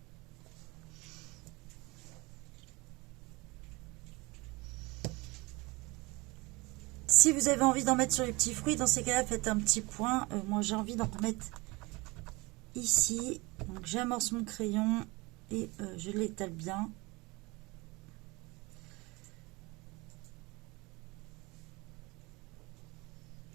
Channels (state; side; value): quieter; left; 24.3 dB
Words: Si vous avez envie d'en mettre sur les petits fruits, dans ces cas-là, faites un petit point. Moi, j'ai envie d'en remettre ici. Donc, j'amorce mon crayon et je l'étale bien.